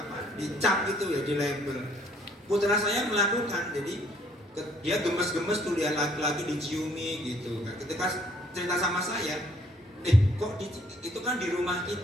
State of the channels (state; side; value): normal; both; correlation 0.63